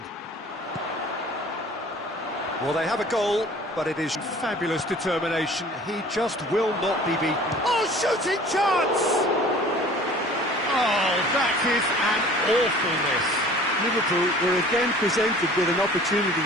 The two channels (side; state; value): both; normal; correlation 0.47